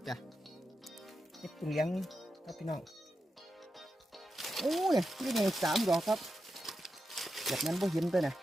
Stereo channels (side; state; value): both; normal; correlation 0.89